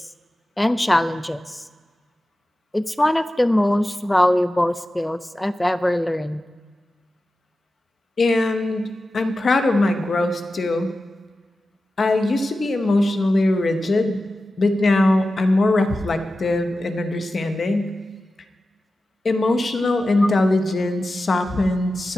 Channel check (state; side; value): normal; both; correlation 0.94